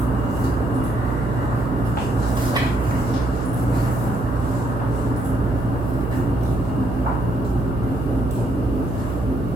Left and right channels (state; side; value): noise; right; hum, 5 dB below the sound